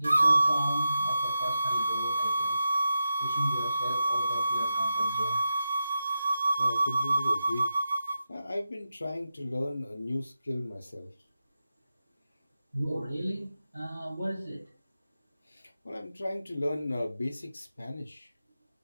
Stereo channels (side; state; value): both; inverted; correlation -0.90